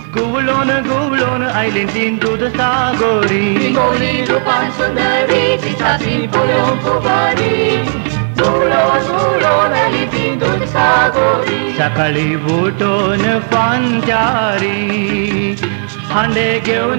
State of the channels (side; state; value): left; silent; 63 dB below the other